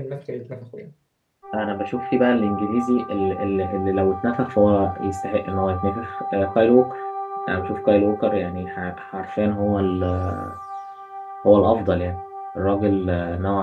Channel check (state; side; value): identical; both; correlation 1.00